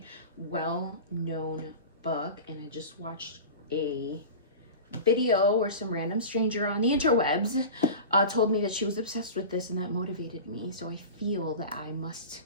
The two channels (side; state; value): both; inverted; correlation -0.32